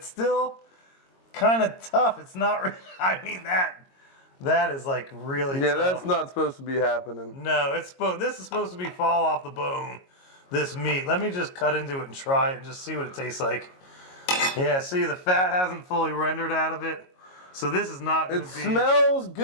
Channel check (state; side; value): late; right; 22 ms